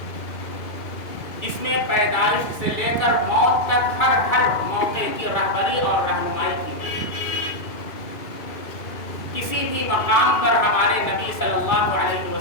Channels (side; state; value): right; late; 2.5 ms